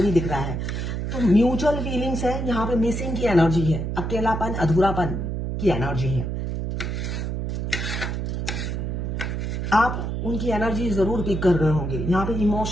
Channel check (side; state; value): right; noise; hum, 3 dB below the sound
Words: भी दिख रहा है। तो म्यूचुअल फीलिंग्स है, यहाँ पे मिसिंग की एनर्जी है, अकेलापन, अधूरापन की एनर्जी है। आप उनकी एनर्जी जरूर पिक कर रहे होंगे। यहाँ पे